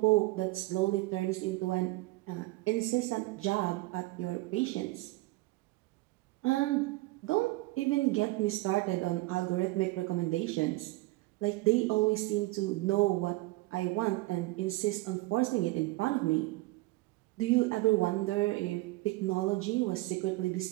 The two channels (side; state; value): left; quieter; 20.7 dB